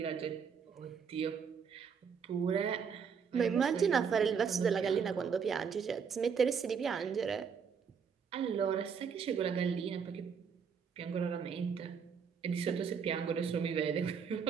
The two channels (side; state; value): left; quieter; 6.5 dB